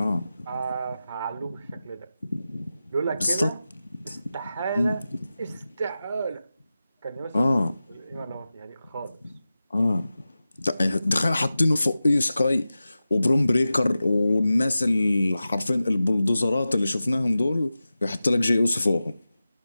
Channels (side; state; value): both; inverted; correlation -0.94